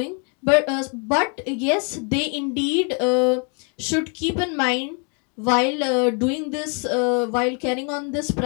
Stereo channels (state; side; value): quieter; right; 38.0 dB